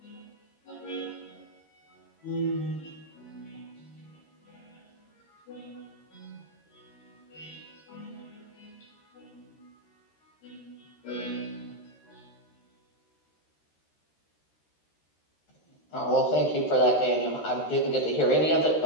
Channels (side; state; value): right; late; 13 ms